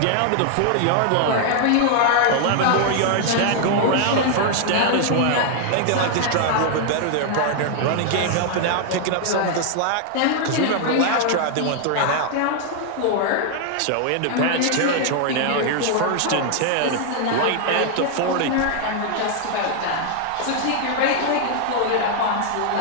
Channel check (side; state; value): both; different; correlation 0.00